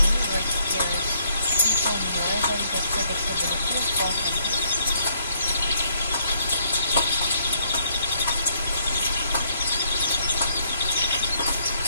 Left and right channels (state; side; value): inverted; both; correlation -0.68